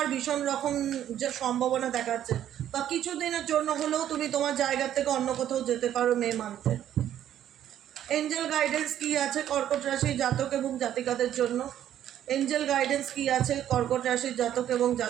ভীষণ রকম যে সম্ভাবনা দেখাচ্ছে, বা কিছুদিনের জন্য হলেও তুমি তোমার জায়গা থেকে অন্য কোথাও যেতে পারো মে মান্থে। এঞ্জেল গাইডেন্স কি আছে কর্কট রাশির জাতক এবং জাতিকাদের জন্য? এঞ্জেল গাইডেন্স কি আছে কর্কট রাশির জাতক এবং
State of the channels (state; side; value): quieter; left; 11.1 dB